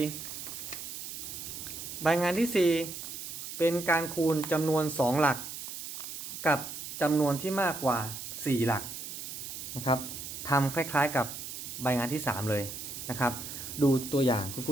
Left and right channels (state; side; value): noise; right; hiss, 8 dB below the sound